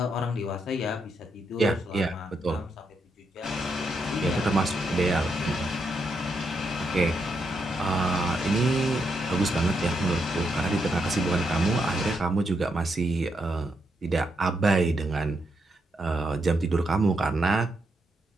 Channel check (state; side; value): normal; both; correlation 0.80